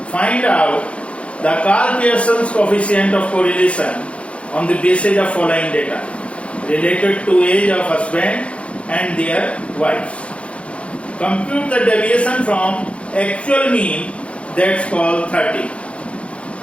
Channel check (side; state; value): right; late; 0.061 ms